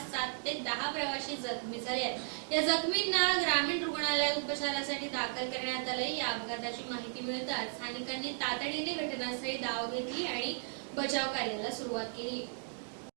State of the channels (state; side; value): silent; left; digital silence